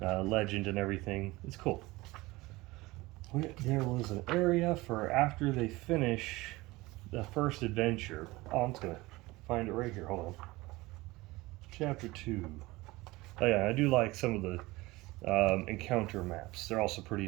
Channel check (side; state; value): left; quieter; 20.9 dB